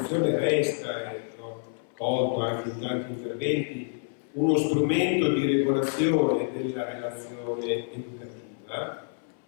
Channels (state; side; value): silent; right; 59 dB below the other